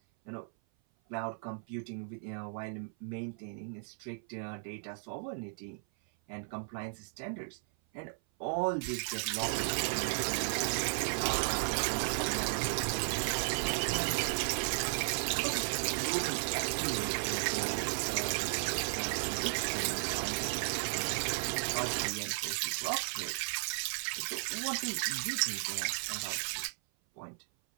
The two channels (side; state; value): left; silent; 54 dB below the other